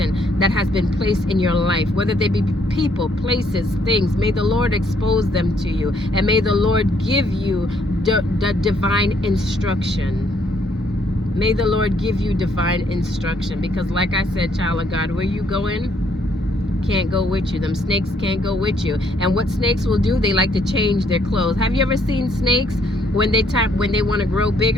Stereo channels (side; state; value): both; normal; correlation 0.69